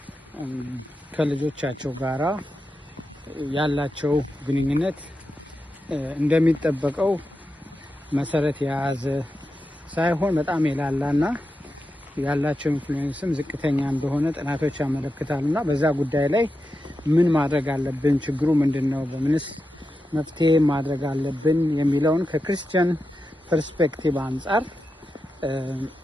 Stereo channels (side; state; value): both; normal; correlation 0.89